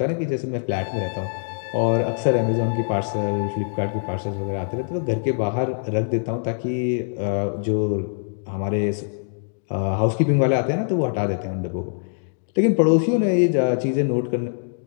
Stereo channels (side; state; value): right; silent; digital silence